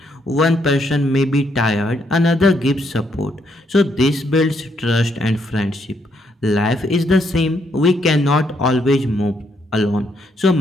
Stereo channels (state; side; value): normal; both; correlation 0.74